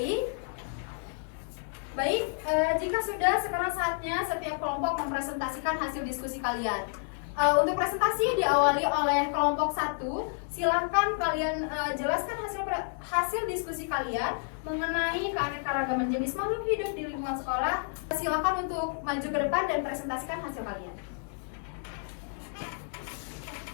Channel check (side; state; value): right; silent; digital silence